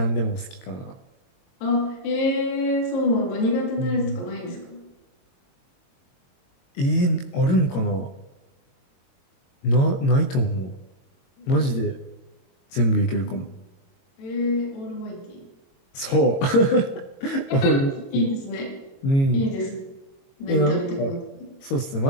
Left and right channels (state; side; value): late; right; 22 ms